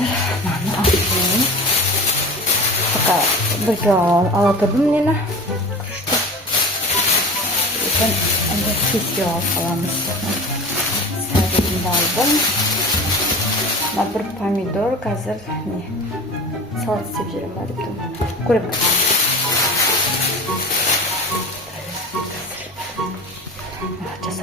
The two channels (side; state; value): both; normal; correlation 0.35